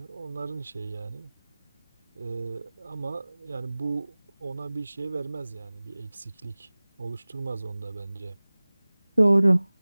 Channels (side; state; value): both; inverted; correlation -0.99